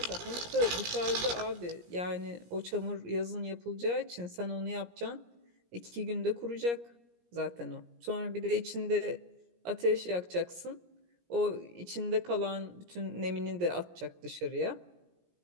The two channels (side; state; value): left; late; 17 ms